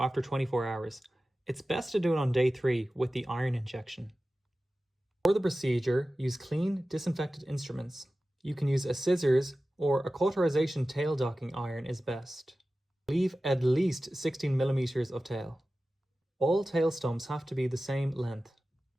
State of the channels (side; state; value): both; normal; correlation 0.95